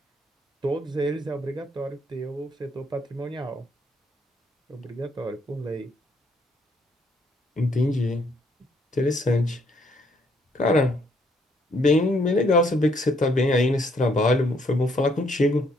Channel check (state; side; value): normal; both; correlation 0.69